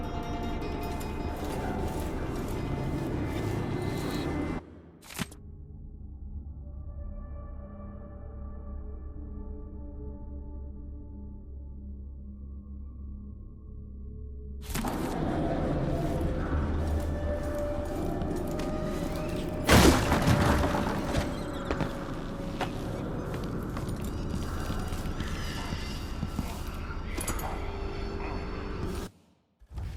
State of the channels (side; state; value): both; identical; correlation 1.00